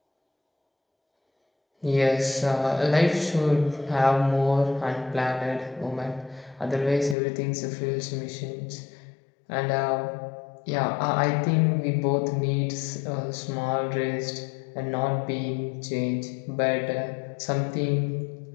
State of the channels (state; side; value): drops out; right; at 7.2 s